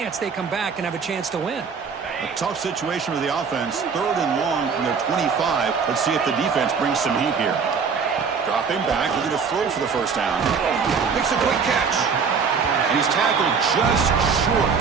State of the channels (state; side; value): quieter; left; 5.8 dB